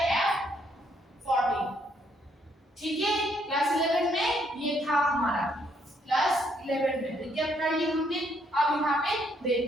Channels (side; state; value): both; normal; correlation 0.71